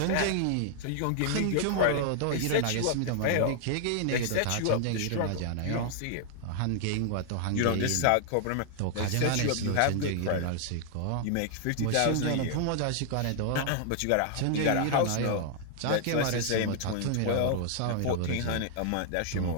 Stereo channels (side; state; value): both; different; correlation 0.00